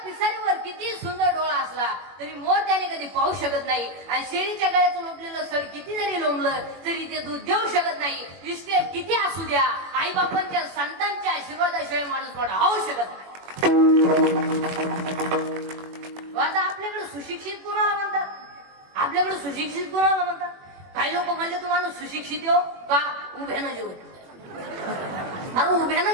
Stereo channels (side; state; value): left; late; 21 ms